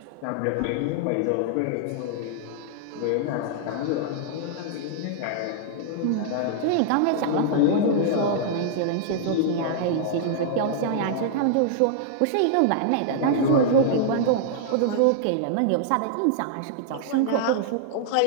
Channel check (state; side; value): different; both; correlation -0.01